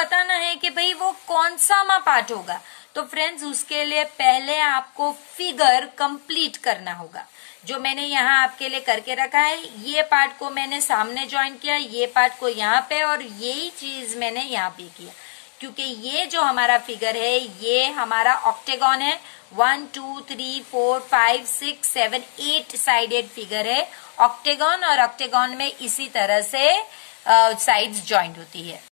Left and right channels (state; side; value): silent; right; digital silence